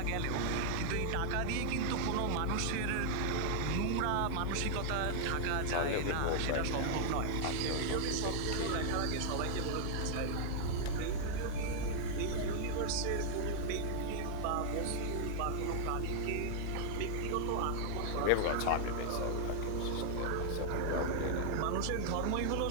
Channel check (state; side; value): different; both; correlation -0.01